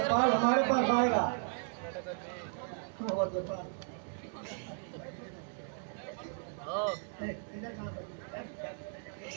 हमारे पास आएगा।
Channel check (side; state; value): left; silent; 54 dB below the other